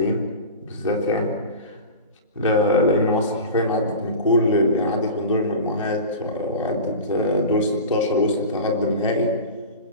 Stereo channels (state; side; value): inverted; both; correlation -0.32